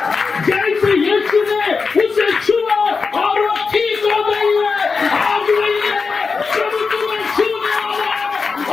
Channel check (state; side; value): quieter; right; 4.8 dB